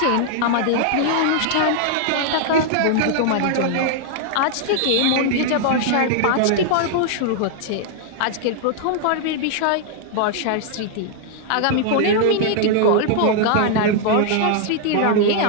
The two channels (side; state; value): both; different; correlation 0.00